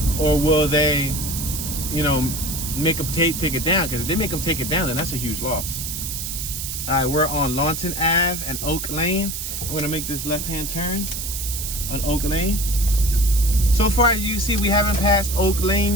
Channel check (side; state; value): right; noise; hiss, 5 dB below the sound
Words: or will they, you know, make them take it down? Because if they make them take it down, then that's a huge loss. All right, we're on Lawton Ave and Oak Lane. I'm going to make this left-hand turn on Oak Lane. So far, as you see, we haven't passed Oak Lane